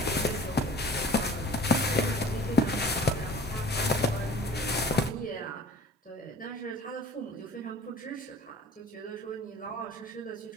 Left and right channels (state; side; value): normal; both; correlation 0.46